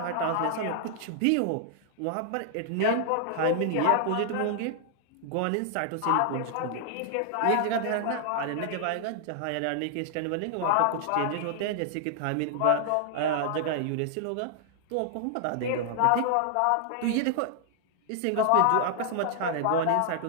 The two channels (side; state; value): both; different; correlation -0.01